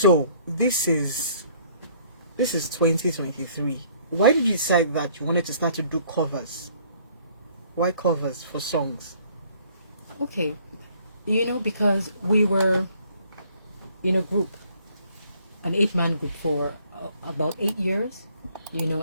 this is 2023. Why did you decide that you wanted to start to do covers? Why covers for songs? Okay, because we were in a group, an 8-man group for about 8 years,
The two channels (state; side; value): inverted; both; correlation -0.60